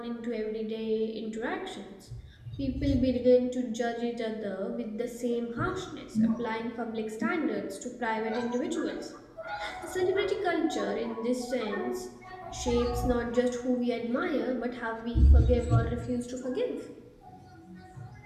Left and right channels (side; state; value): both; identical; correlation 1.00